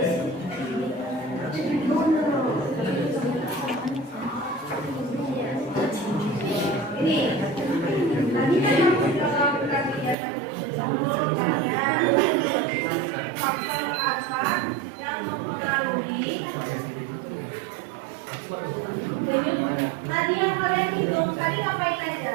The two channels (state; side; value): drops out; left; at 10.2 s